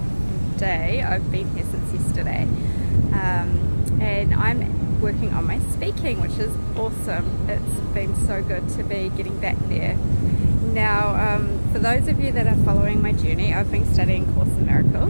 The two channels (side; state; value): both; inverted; correlation -1.00